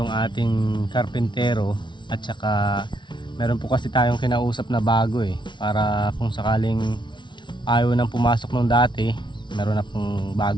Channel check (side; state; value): right; late; 0.23 ms